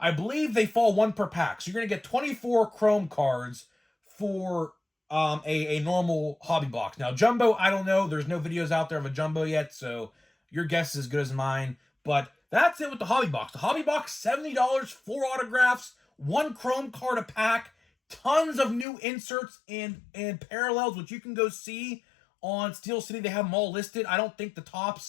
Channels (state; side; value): drops out; right; at 18.9 s